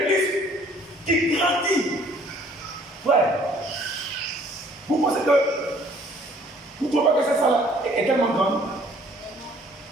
qui grandit. Frère, vous pensez que vous ne trouvez pas que cette salle est tellement grande?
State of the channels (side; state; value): both; normal; correlation 0.58